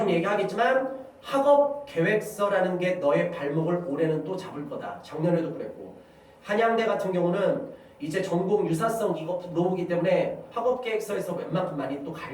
얘기하겠지만 학업 계획서라는 게 너의 발목을 올해는 또 잡을 거다. 작년에도 그랬고 한양대 같은 경우는 이제 전공 유사성 이거 노무기 때문에 학업 계획서에서 웬만큼 많이 또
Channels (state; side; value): identical; both; correlation 1.00